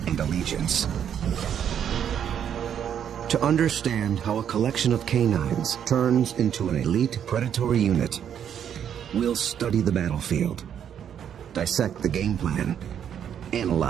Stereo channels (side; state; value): left; quieter; 8.9 dB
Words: and allegiance. To understand how a collection of canines turns into an elite predatory unit, we'll study the battlefield, dissect the game plan,